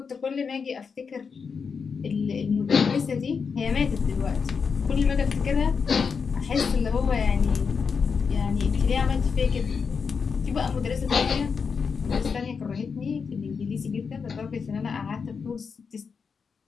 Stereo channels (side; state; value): right; quieter; 5.7 dB